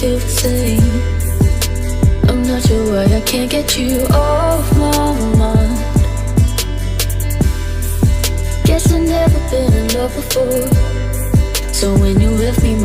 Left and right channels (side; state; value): both; identical; correlation 1.00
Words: feel the same. I'm not sure why I can't get you off my mind. Guess I've never been in love before. So when you left me,